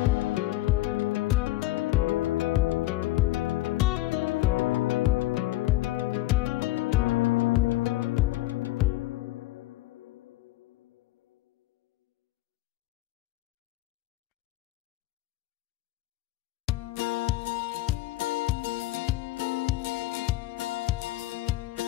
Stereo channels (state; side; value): quieter; right; 17.3 dB